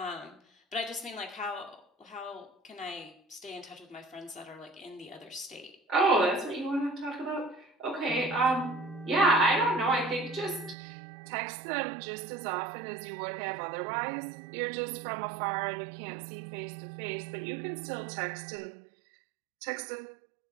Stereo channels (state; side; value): drops out; left; at 10.8 s